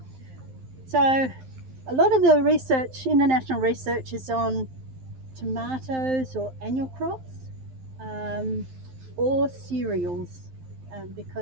So a lot of the research, international research, is on tomatoes or annual crops, or cereals,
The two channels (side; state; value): left; late; 12 ms